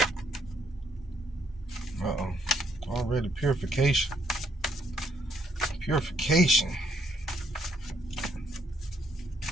Uh-oh. Already purification. Purification.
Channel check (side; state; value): both; normal; correlation 0.71